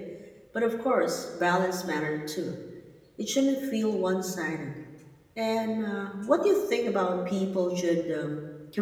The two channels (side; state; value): both; identical; correlation 1.00